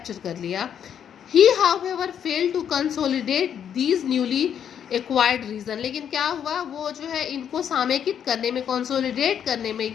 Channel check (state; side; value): quieter; right; 8.7 dB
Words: कर लिया. He however failed to consolidate these newly acquired region. लेकिन क्या हुआ, वो जो है इनको सामेकित करने में, कंसोलिडेट करने में